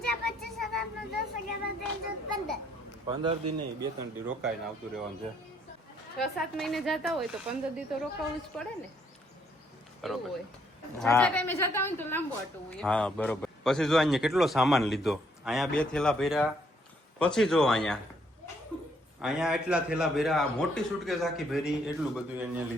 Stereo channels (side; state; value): both; normal; correlation 0.69